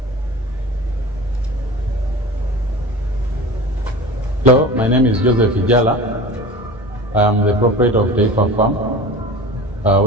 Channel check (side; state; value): both; normal; correlation 0.36